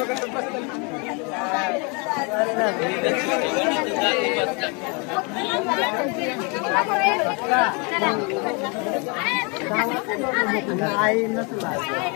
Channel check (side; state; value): right; quieter; 32.2 dB